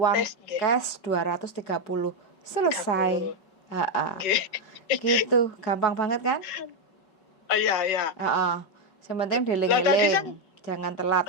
cash 230. Selesai. Gitu, gampang banget kan? Iya. Yang penting dieling-eling. Jangan telat.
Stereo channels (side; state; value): right; late; 5.3 ms